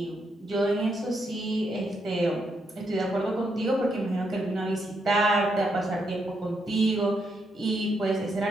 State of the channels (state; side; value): normal; both; correlation 0.79